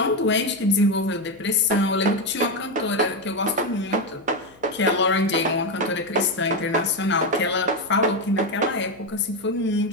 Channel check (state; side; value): noise; left; hum, 29 dB below the sound